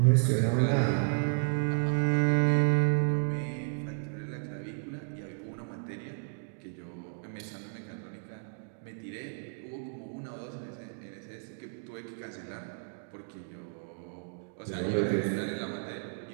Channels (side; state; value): left; silent; digital silence